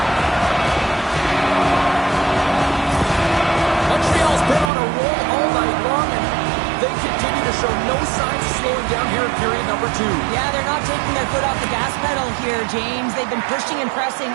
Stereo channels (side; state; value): left; drops out; at 4.7 s